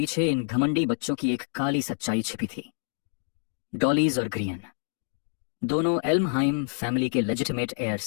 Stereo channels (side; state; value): right; silent; digital silence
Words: इन घमंडी बच्चों की एक काली सच्चाई छिपी थी। डॉलीज और ग्रियन दोनों एल्महाइम फैमिली के लेजिटिमेट